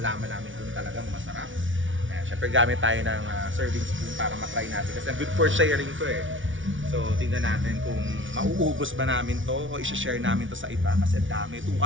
namin kung talagang masarap. Syempre gamit tayo ng serving spoon para matry natin kasi good for sharing to eh. So tingnan natin kung mauubos ba namin to o i-share namin to sa iba kasi dami.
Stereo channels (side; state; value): left; late; 0.56 ms